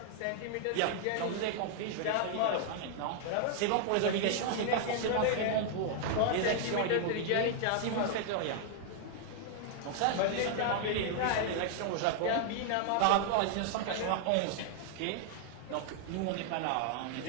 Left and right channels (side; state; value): both; different; correlation 0.00